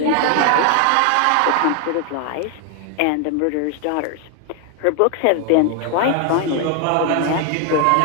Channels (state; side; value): different; both; correlation 0.00